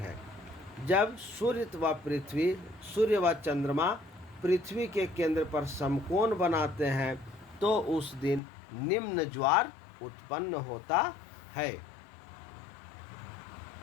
जब सूर्य व चंद्रमा पृथ्वी के केंद्र पर समकोण बनाते हैं तो उस दिन निम्न ज्वार उत्पन्न होता है।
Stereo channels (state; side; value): drops out; right; at 8.4 s